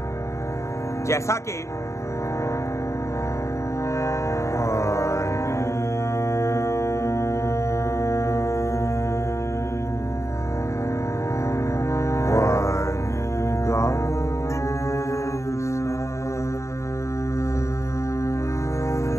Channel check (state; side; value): late; right; 0.14 ms